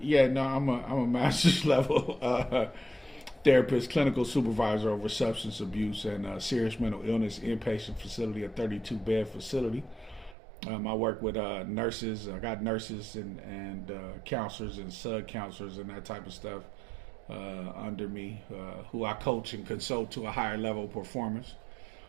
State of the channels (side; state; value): left; drops out; at 10.4 s